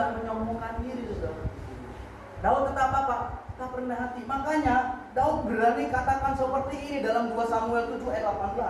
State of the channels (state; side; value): identical; both; correlation 1.00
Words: menyombongkan diri, saudara. Daud tetap apa? Tetap rendah hati. Makanya Daud berani katakan seperti ini dalam 2 Samuel 7 ayat